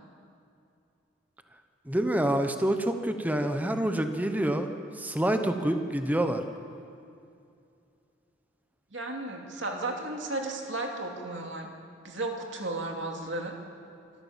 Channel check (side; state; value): both; normal; correlation 0.71